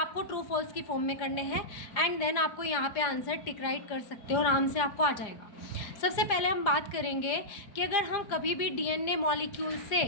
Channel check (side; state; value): right; late; 4.9 ms